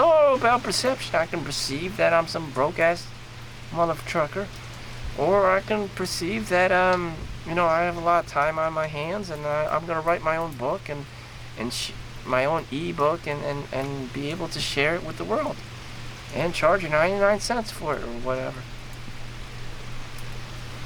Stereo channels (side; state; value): both; identical; correlation 1.00